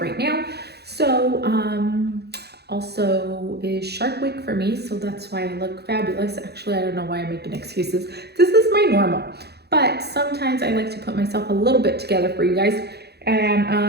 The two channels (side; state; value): left; late; 0.48 ms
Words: right now. So also is Shark Week for me, so that's why I look fabulous. Actually, I don't know why I'm making excuses. This is my normal, but sometimes I like to put myself a little bit together for you guys, and